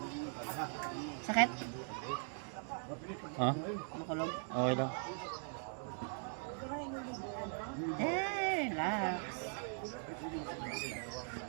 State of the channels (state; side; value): silent; left; 51 dB below the other